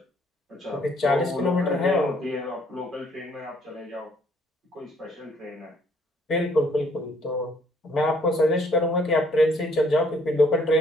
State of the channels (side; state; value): both; normal; correlation 0.64